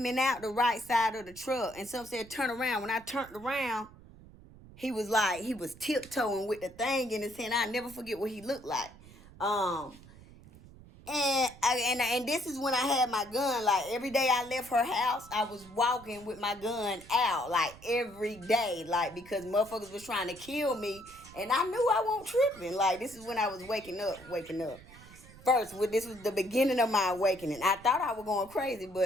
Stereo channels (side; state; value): right; noise; rumble, 20 dB below the sound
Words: out the right side of the truck, and some said turn around. When I turned around, he was tiptoeing with the thing in his hand. I'll never forget what he looked like. And this is when I had my gun. Like, every day I left her house, I was walking with my gun out, like, every day, like, because motherfuckers was trying to kill me, and I knew I wasn't tripping. Like, this is when I was waking up. first, this was the beginning of my awakening. I thought I was going crazy,